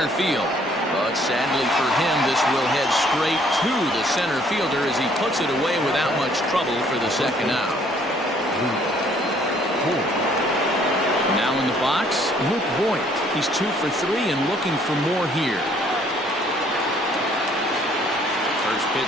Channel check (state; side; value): normal; both; correlation 0.62